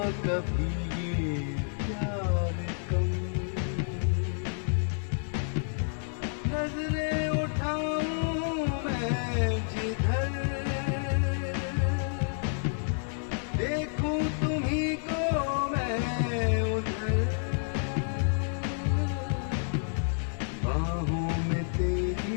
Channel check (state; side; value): silent; right; 58 dB below the other